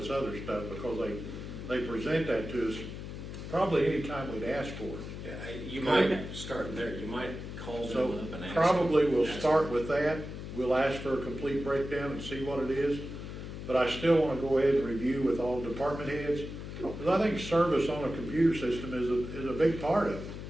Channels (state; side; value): noise; left; hum, 9 dB below the sound